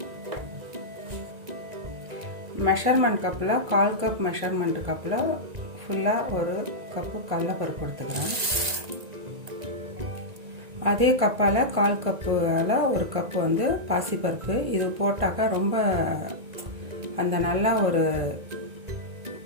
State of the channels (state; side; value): late; left; 1.9 ms